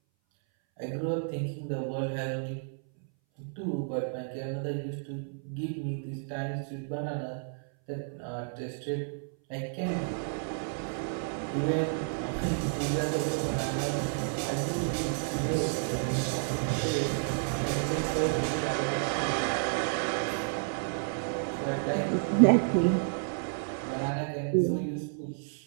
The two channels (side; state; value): left; silent; 57 dB below the other